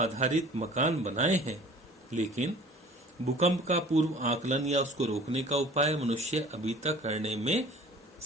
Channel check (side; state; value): both; normal; correlation 0.47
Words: मकान बनाए हैं, लेकिन भूकंप का पूर्व आकलन या उसको रोकने का उपाय मनुष्य अभी तक करने में